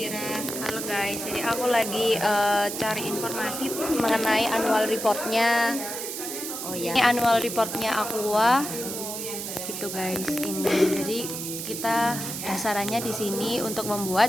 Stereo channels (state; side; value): noise; right; hiss, 6 dB below the sound